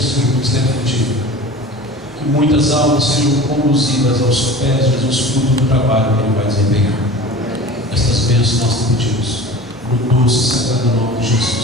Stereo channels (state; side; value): normal; both; correlation 0.38